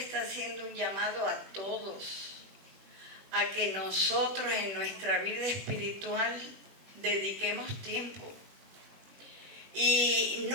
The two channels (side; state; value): left; late; 20 ms